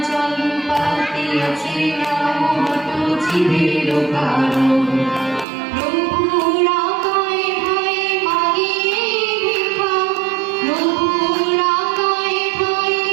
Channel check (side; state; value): left; drops out; at 5.5 s